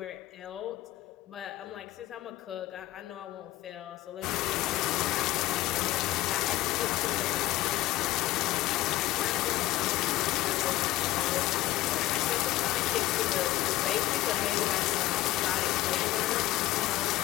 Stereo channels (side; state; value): right; quieter; 16.4 dB